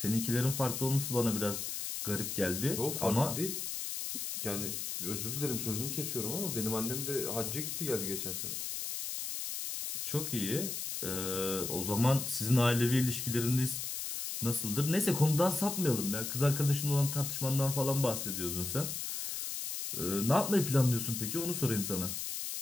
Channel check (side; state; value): left; noise; hiss, 4 dB below the sound